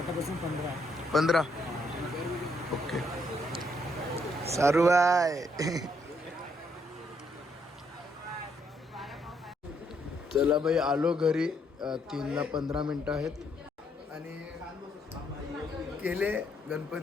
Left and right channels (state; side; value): normal; both; correlation 0.73